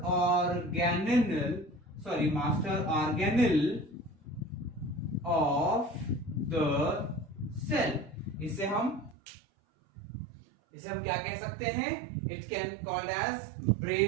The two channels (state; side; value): drops out; left; at 9.2 s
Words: organelle of the cell. इसे हम क्या कह सकते हैं? It can called as